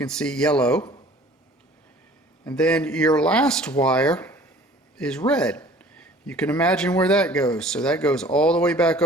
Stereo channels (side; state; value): both; normal; correlation 0.50